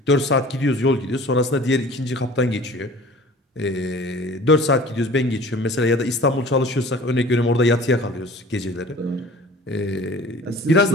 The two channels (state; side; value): normal; both; correlation 0.45